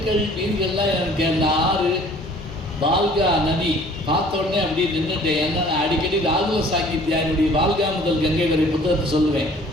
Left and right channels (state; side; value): normal; both; correlation 0.52